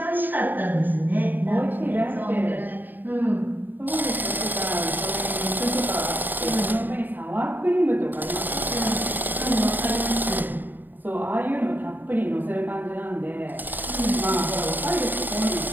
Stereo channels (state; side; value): late; left; 0.090 ms